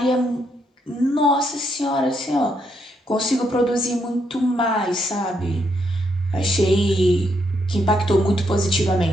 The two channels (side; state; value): both; normal; correlation 0.77